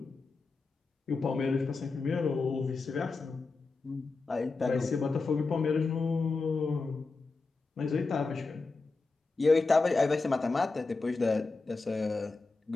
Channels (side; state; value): right; quieter; 3.9 dB